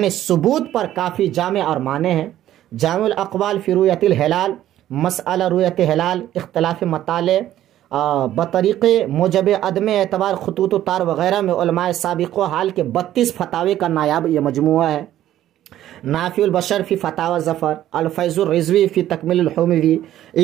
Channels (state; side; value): quieter; left; 12.7 dB